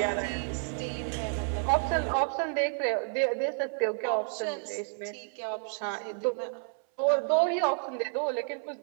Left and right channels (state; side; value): silent; left; 58 dB below the other